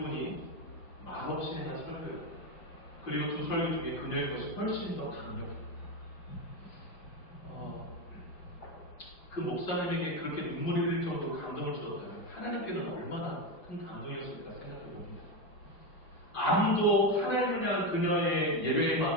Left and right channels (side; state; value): right; late; 5.8 ms